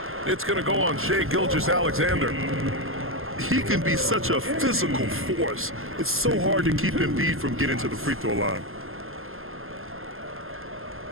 It's going to go on Shai Gilgeous-Alexander. He can be such a physical force. It's so hard to keep Embiid from getting to the free throw line.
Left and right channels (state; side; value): late; left; 0.61 ms